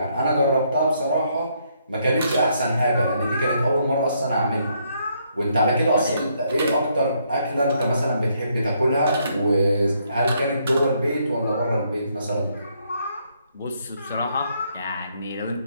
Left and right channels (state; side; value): inverted; both; correlation -0.72